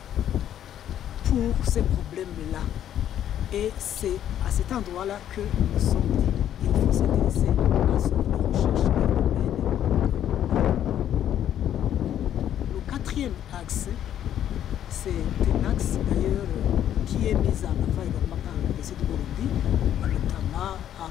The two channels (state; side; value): quieter; right; 10.7 dB